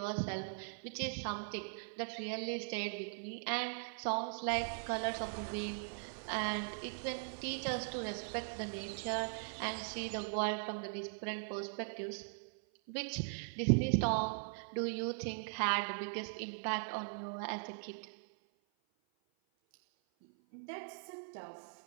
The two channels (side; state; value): left; silent; 51 dB below the other